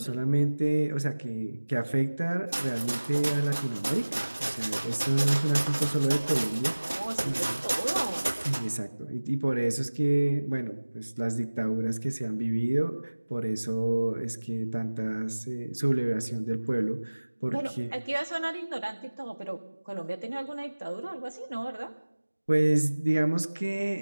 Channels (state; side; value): inverted; both; correlation -1.00